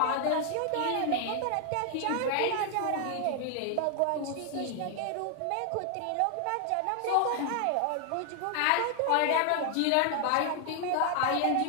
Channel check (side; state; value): both; different; correlation 0.00